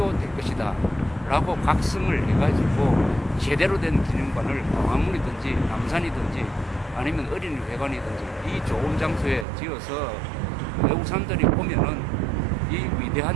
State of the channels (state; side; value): drops out; left; at 9.5 s